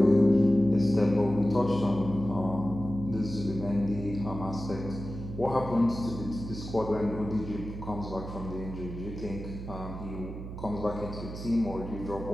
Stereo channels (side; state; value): right; noise; hum, 9 dB below the sound